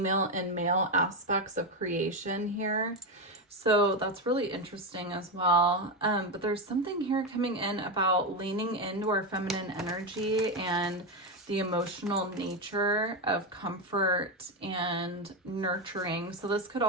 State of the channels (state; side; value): normal; both; correlation 0.11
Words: and male aspects of creation here. So that's really interesting as well. But there's something here coming in about leaning into our feminine energy and the emotional nature of comfort and nurturing. So this could